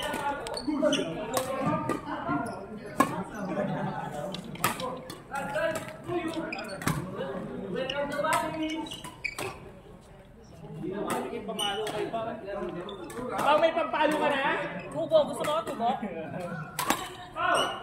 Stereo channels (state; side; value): identical; both; correlation 1.00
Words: Pamalo kayo pa. May pampalo ka na? Tubo, gusto mo tubo?